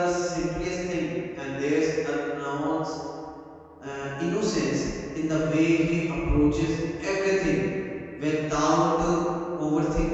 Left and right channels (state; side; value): identical; both; correlation 1.00